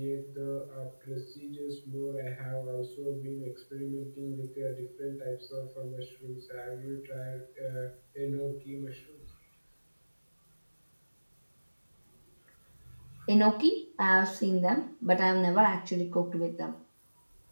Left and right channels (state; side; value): inverted; both; correlation -1.00